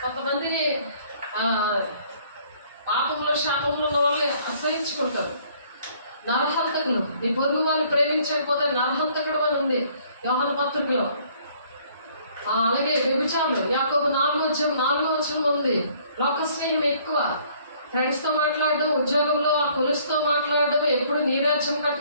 కొంతమంది పాపంలో శాపంలో ఉన్న వాళ్ళే అసహించుకుంటారు. నరహంతకులు, నీ పొరుగు వాళ్ళు ప్రేమించకపోతే నరహంతకుడు అని ఉంది యోహాను పత్రికలో. అలాగే వ్యభిచారులు యాకోబు 4:4 ఉంది. లోక స్నేహం ఎక్కువ, ఫ్రెండ్స్తో మాట్లాడడం, ఉద్యోగంలో ఆ కొలుసుతో మాట్లాడడం, ఎప్పుడు నీ రాజ్యం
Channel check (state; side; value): inverted; both; correlation -0.60